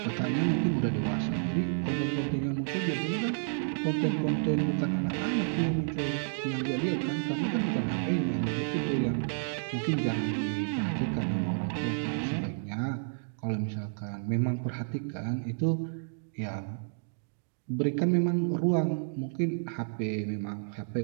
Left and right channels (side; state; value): left; silent; digital silence